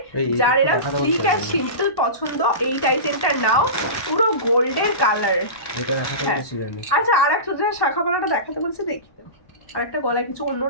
যার এরা স্লিক আর সিম্পল পছন্দ এই টাই চেনটা নাও, পুরো গোল্ডের কালার। এটা দেখাতে বলেছিলেন। আচ্ছা আর একটা শাখা পলাটা দেখাতে বলছে, দেখি আর একটা গলায় কিছু অন্য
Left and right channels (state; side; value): late; right; 1.1 ms